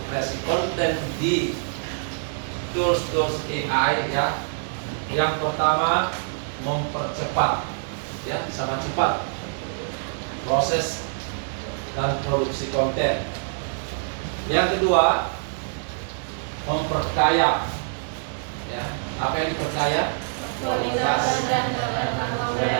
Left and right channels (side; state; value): left; silent; digital silence